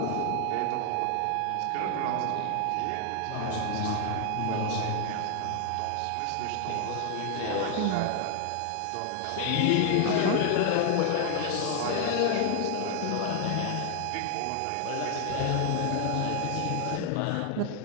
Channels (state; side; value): different; both; correlation 0.00